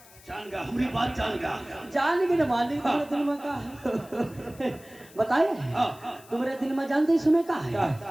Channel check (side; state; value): left; noise; hiss, 23 dB below the sound